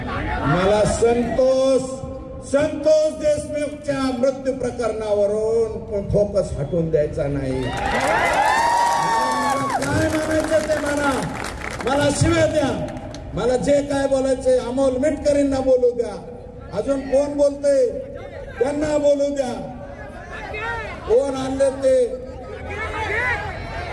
मला संतोष देशमुखच्या मृत्यू प्रकरणावरून फोकस हटवून द्यायचा नाही. काय म्हणायचं ते मला शिव्या द्या, मला जे काय बोलायचे अमोल मिटकरींना बोलू द्या. अजून कोण बोलते त्यांना बोलू द्या. कोण आणले ते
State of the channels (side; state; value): both; identical; correlation 1.00